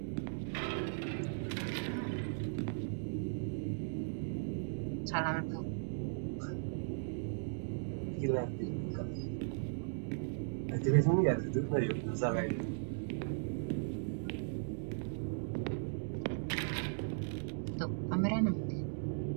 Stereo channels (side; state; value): left; silent; digital silence